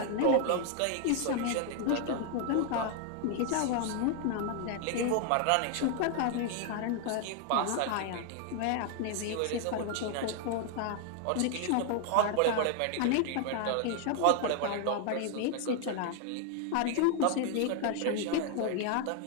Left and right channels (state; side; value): different; both; correlation 0.00